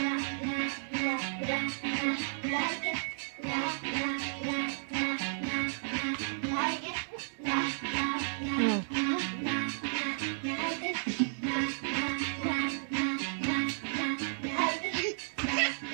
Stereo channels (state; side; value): silent; left; 56 dB below the other